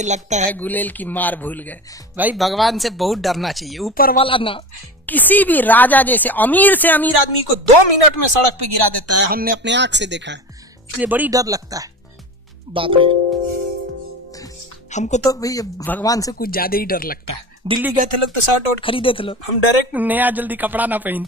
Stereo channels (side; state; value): both; normal; correlation 0.30